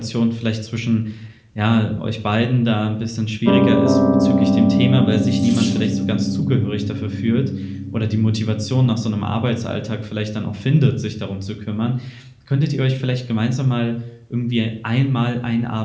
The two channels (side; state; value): both; identical; correlation 1.00